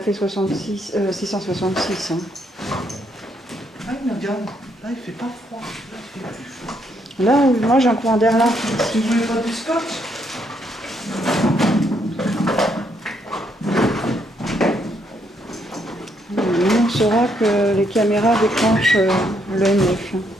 666. Hein. Ah, il regarde. Là, il fait pas froid. Là, il fait plus chaud. Là, moi j'ai un courant d'air là. Vous voulez pas du scotch? saura que les caméras déclenchent le M9.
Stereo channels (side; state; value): both; normal; correlation 0.73